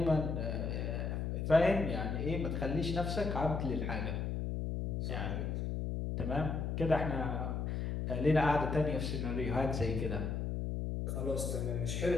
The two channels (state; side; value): noise; left; hum, 1 dB below the sound